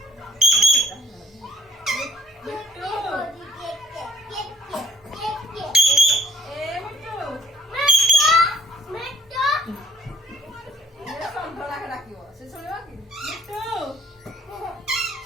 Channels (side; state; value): both; normal; correlation 0.62